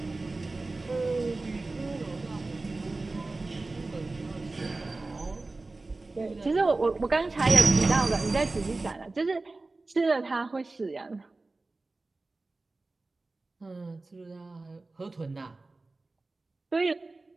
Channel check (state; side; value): quieter; left; 3.3 dB